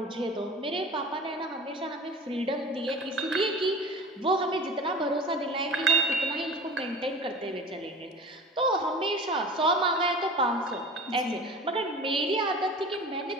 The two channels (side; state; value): both; normal; correlation 0.38